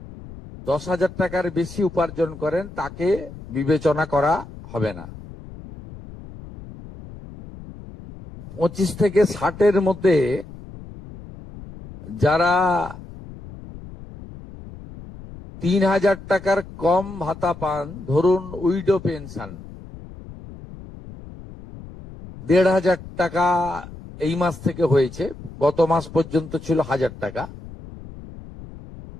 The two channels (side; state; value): left; noise; rumble, 15 dB below the sound